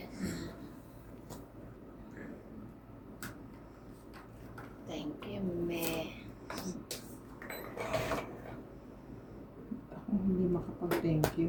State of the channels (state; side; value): identical; both; correlation 1.00